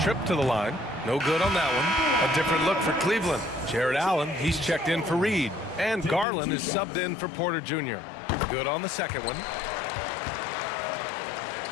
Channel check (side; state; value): right; drops out; at 6.2 s